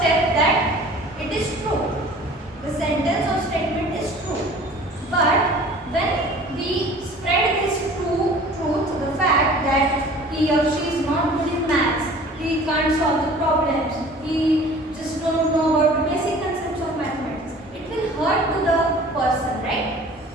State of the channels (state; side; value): normal; both; correlation 0.47